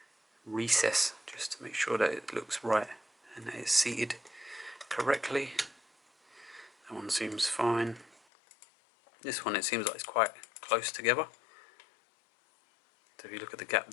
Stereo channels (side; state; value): right; drops out; at 8.2 s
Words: recess just to make sure that it looks right and that it's seated correctly. That one seems fine. This one, it seems like it's quite close together. So if you look at the gap